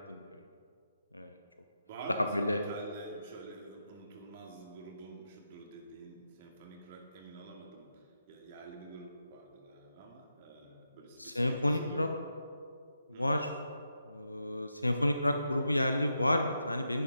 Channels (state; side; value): inverted; both; correlation -0.84